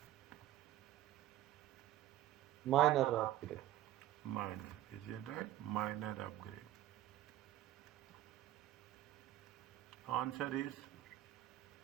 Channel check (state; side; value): quieter; left; 13.9 dB